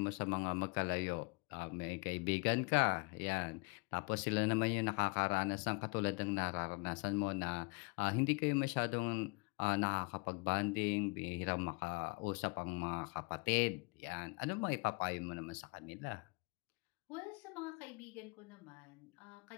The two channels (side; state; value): right; quieter; 29.9 dB